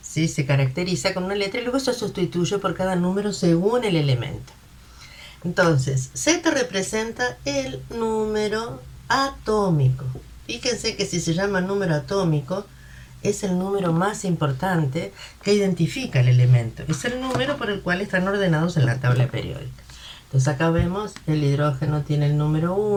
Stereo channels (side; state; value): both; identical; correlation 1.00